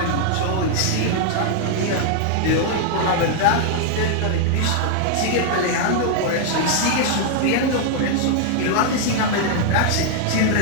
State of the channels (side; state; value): both; different; correlation 0.00